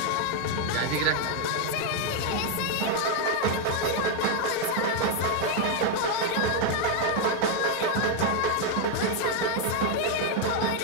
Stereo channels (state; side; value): different; both; correlation 0.01